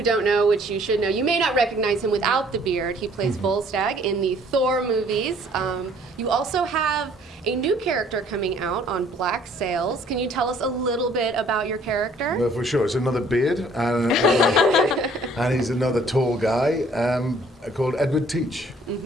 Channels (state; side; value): normal; both; correlation 0.59